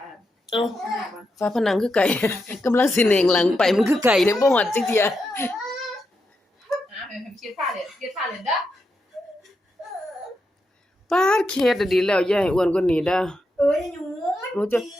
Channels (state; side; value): normal; both; correlation 0.85